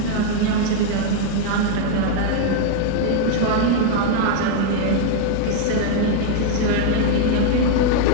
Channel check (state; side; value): different; both; correlation 0.00